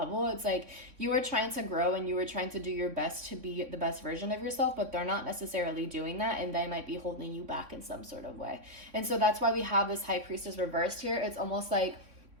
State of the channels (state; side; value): late; left; 3.4 ms